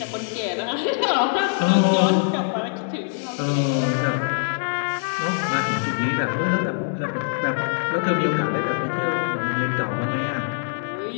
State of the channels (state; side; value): silent; right; digital silence